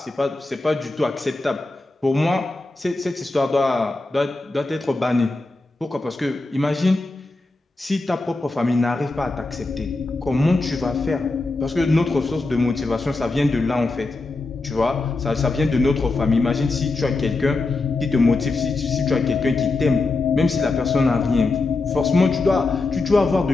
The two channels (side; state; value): right; quieter; 3.3 dB